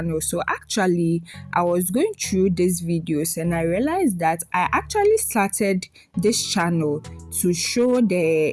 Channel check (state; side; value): identical; both; correlation 1.00